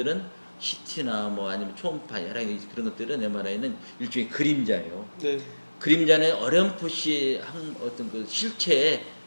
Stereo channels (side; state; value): both; inverted; correlation -1.00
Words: CT나 뭐 아니면 초음파 여러 가지 그런 것들은 MRI는 일종의 그림자예요. 네. 그림자는 어렴풋이 한 어떤 그 실체의